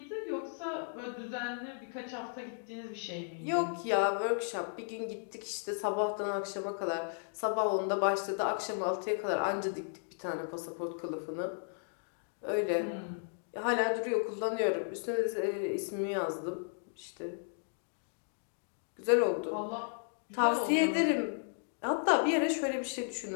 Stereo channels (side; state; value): right; silent; digital silence